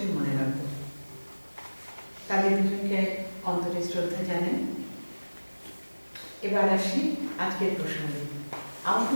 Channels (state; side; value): inverted; both; correlation -1.00